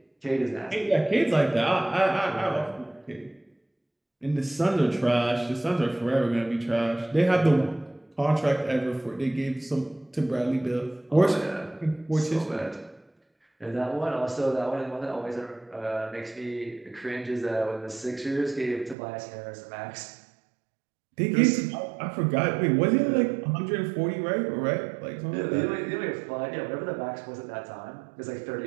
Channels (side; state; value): left; drops out; at 18.9 s